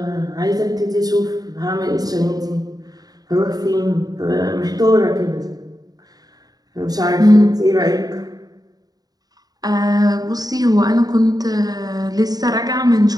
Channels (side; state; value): left; late; 0.18 ms